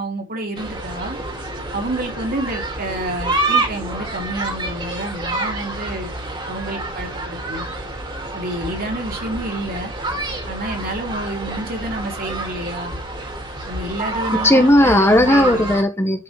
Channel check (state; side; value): normal; both; correlation 0.55